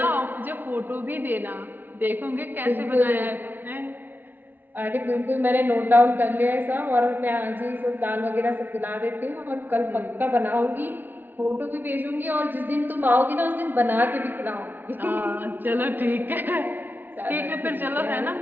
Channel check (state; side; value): late; left; 0.090 ms